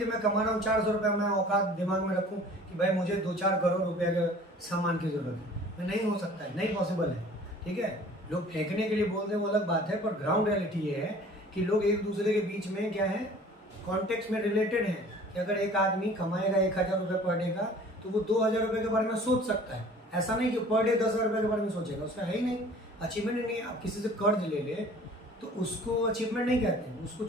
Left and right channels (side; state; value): both; normal; correlation 0.48